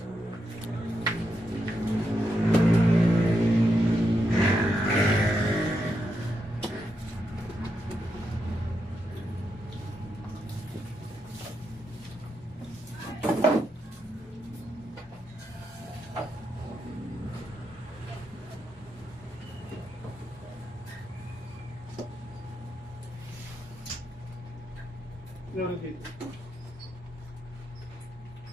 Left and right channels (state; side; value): normal; both; correlation 0.83